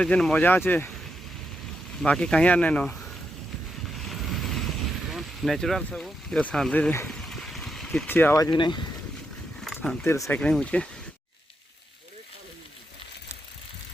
ଯେନ୍ ମଜା ଅଛେ ବାକି କାହିଁ ଆର୍ ନାଇଁନ ନ୍ୟାଚୁରାଲ ସବୁ ଏ ଶାନ୍ତିରେ କିଛି ଆୱାଜ ବି ନାହିଁ ଶାନ୍ତିରେ ସାଇକ୍ଲିଂ ହଉଛେ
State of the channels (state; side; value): normal; both; correlation 0.83